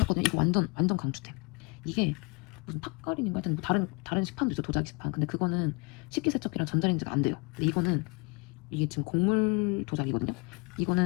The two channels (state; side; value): quieter; right; 29.3 dB